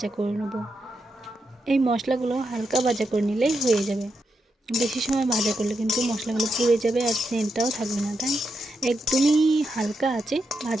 করে নেব। এই মশলাগুলো হালকা ভাজা করে নিলেই হয়ে যাবে। বেশি সময় ভাজা করলে কিন্তু মশলাগুলো পুড়ে যাবে আর সেন্টটাও থাকবে না, তাই একদমই হালকা আছে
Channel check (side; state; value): both; normal; correlation 0.84